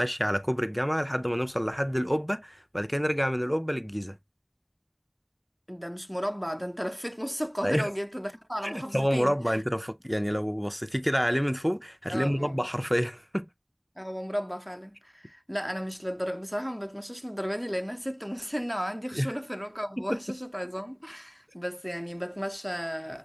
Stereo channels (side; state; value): both; identical; correlation 1.00